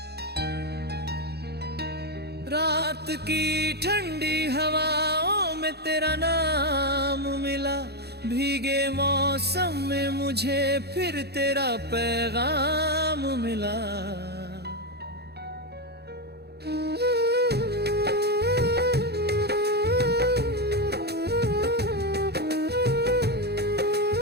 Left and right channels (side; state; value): left; late; 0.48 ms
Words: रात की ठंडी हवाओं में तेरा नाम मिला, भीगे मौसम में मुझे फिर तेरा पैगाम मिला।